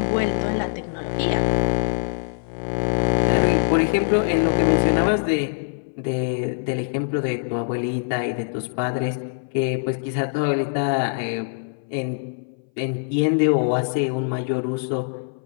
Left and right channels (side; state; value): right; silent; 60 dB below the other